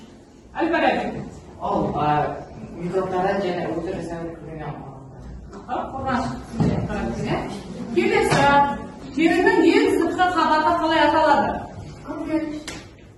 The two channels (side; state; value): both; identical; correlation 1.00